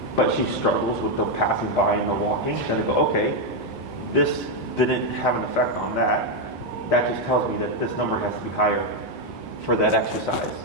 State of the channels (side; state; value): both; normal; correlation 0.03